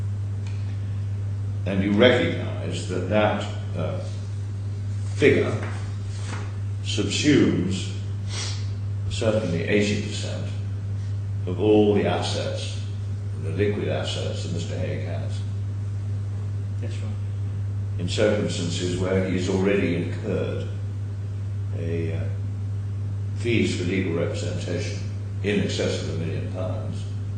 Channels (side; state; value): both; identical; correlation 1.00